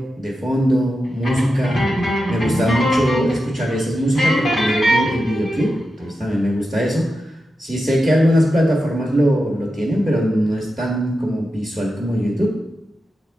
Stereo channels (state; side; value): normal; both; correlation 0.90